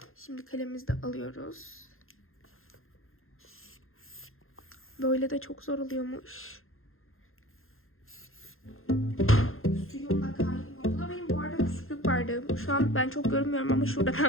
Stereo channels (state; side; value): late; right; 0.61 ms